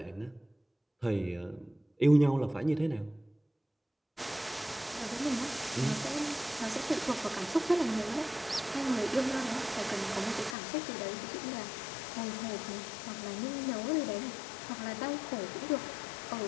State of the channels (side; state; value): right; drops out; at 10.6 s